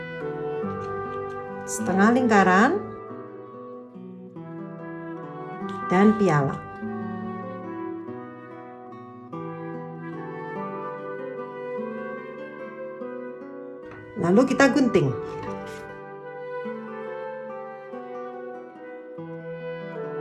Setengah lingkaran dan piala. Lalu kita gunting.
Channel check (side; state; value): both; identical; correlation 1.00